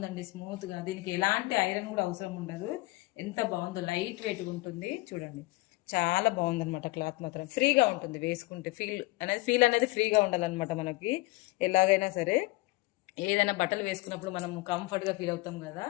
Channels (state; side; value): quieter; right; 21.7 dB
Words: స్మూత్ గా. దీనికి ఎలాంటి ఐరన్ కూడా అవసరం ఉండదు. ఎంత బాగుందో, లైట్ వెయిట్ ఉంటుంది చూడండి. చాలా బాగుందన్నమాట. క్లాత్ మాత్రం ఫ్రీగా ఉంటుంది వేసుకుంటే. ఫీల్ అనేది ఫ్రీగా ఉండాలన్నమాట మనకి. ఎలాగైనా సరే ఏదైనా బట్టలు వేసుకున్నప్పుడు మనం కంఫర్ట్ గా ఫీల్ అవుతాం కదా,